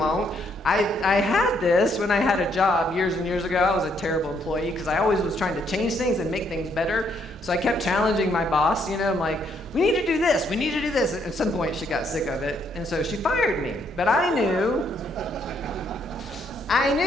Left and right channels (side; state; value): both; normal; correlation 0.71